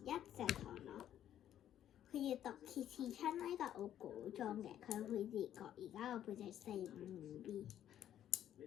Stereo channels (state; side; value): quieter; right; 11.0 dB